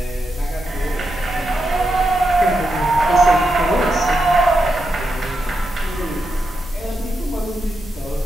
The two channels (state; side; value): normal; both; correlation 0.85